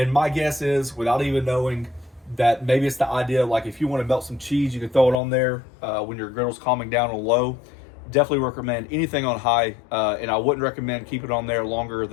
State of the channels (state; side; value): drops out; right; at 5.2 s